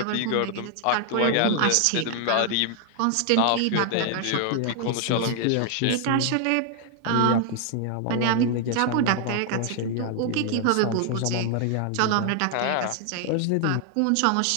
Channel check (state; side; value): different; both; correlation 0.00